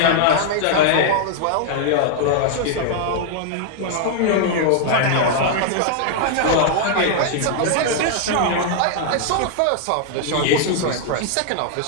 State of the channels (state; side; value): different; both; correlation 0.00